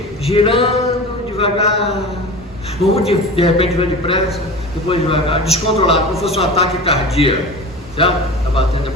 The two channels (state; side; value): normal; both; correlation 0.33